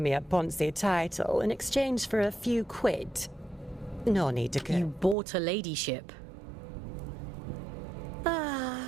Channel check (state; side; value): drops out; left; at 5.2 s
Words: a Ponzi title in exchange for a few quid. No need to You bought a ladyship.